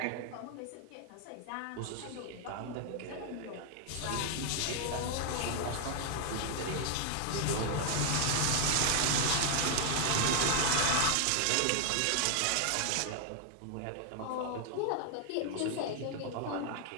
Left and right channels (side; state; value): both; different; correlation 0.00